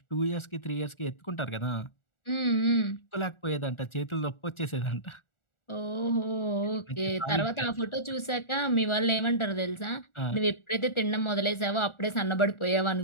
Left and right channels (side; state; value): right; late; 1.4 ms